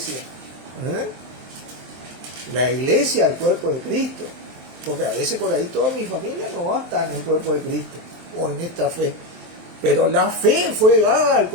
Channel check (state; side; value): late; left; 23 ms